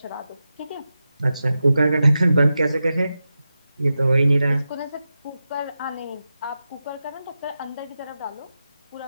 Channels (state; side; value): inverted; both; correlation -0.91